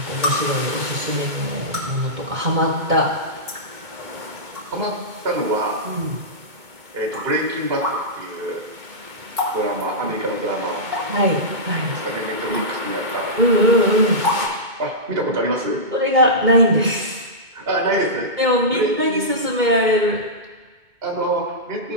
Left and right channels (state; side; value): late; left; 2.2 ms